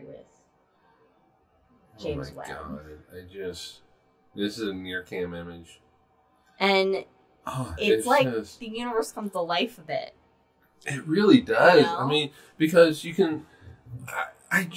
with James Webb. Oh my God! This is a near cam image. And it's like the universe comes to life a bit. It really does. You know? I mean, because you can... I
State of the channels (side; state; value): both; identical; correlation 1.00